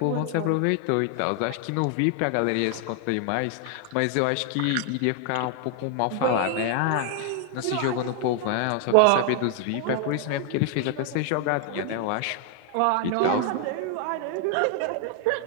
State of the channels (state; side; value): different; both; correlation 0.00